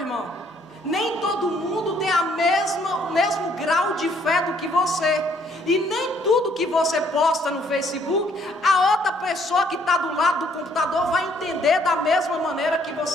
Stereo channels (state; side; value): normal; both; correlation 0.65